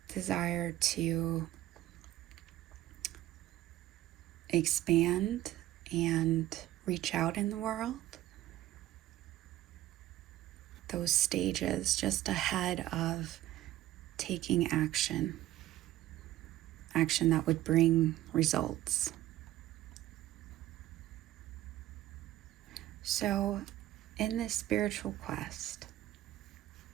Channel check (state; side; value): quieter; left; 14.6 dB